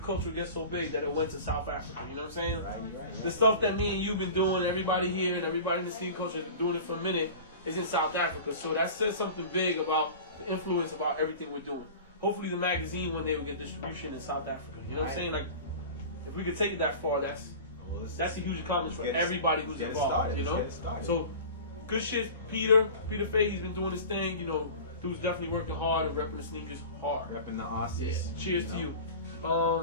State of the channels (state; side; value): inverted; both; correlation -0.36